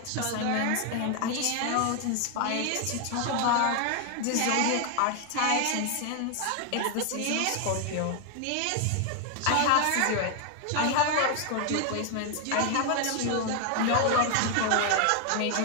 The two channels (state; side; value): different; both; correlation 0.00